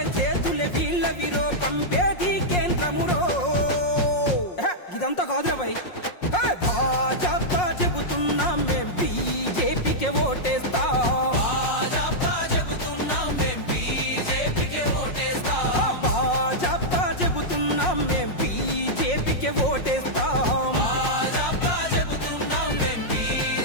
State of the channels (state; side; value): late; right; 5.5 ms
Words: చేతులే వీళ్ళ విరో, పంపేది కేంద్రమురో. ఇదంతా కాదురా భయ్, భాజపా చెబుతున్నాం మేం బీజేపీకే ఓటేస్తాం. భాజపా చెబుతున్నాం మేం బీజేపీకే ఓటేస్తాం.